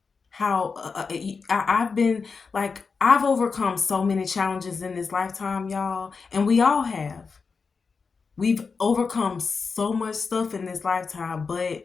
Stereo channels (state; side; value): quieter; right; 5.0 dB